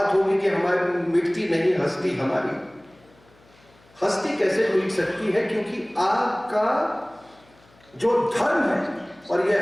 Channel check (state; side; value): noise; left; hum, 30 dB below the sound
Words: कि हमारी मिटती नहीं हस्ती, हमारी हस्ती कैसे मिट सकती है? क्योंकि आपका जो धर्म है, और ये